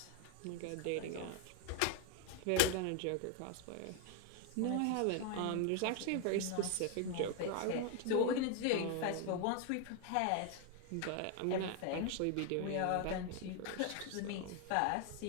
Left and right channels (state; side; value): different; both; correlation 0.00